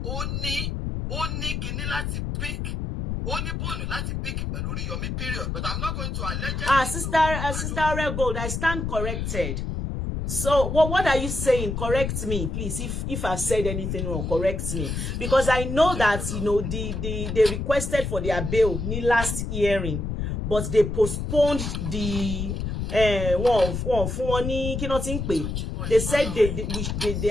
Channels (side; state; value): left; noise; rumble, 3 dB below the sound